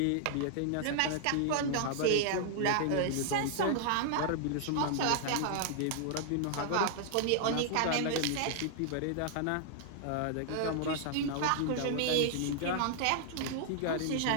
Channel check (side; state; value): both; different; correlation -0.01